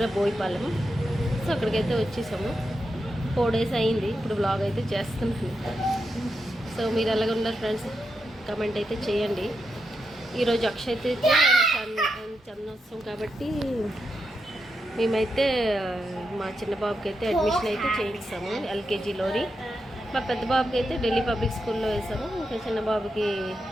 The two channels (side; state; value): both; normal; correlation 0.86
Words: బోయిపాలెం. సో అక్కడికైతే వచ్చేసాము. 4 days అయింది. ఇప్పుడు బ్లాగ్ అయితే చేస్తున్నాను. సో మీరు ఎలాగ ఉన్నారు ఫ్రెండ్స్, కమెంట్ అయితే చేయండి. ఈరోజు అక్షయ్ అయితే చందనోత్సవం కాబట్టి మేమైతే మా చిన్న బాబుకి అయితే అడ్మిషన్ అయితే చేయిస్తాము ఎల్కేజీలోని. మా పెద్ద బాబుకి అయితే ఢిల్లీ పబ్లిక్ స్కూల్లో వేసాము. ఇంకా చిన్న బాబుకి